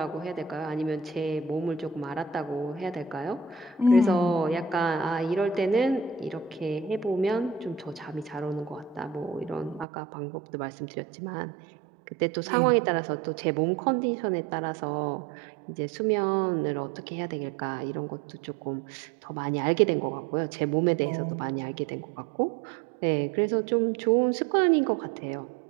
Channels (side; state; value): left; drops out; at 9.9 s